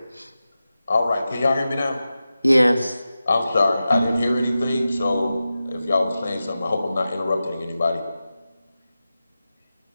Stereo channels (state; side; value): inverted; both; correlation -0.93